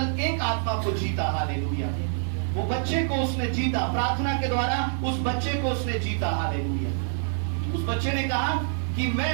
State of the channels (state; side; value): silent; left; digital silence